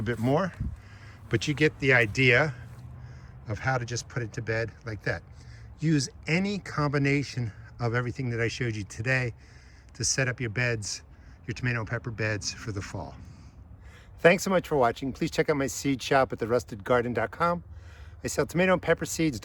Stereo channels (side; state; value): both; identical; correlation 1.00